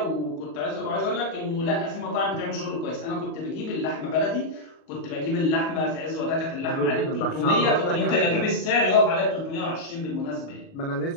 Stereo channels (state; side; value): late; right; 37 ms